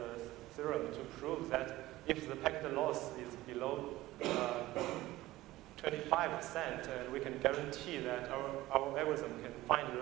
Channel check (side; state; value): left; quieter; 17.2 dB